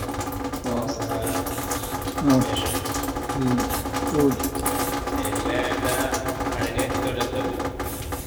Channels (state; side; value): identical; both; correlation 1.00